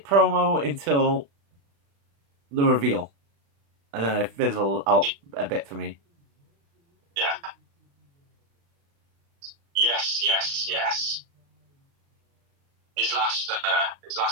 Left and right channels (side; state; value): left; late; 35 ms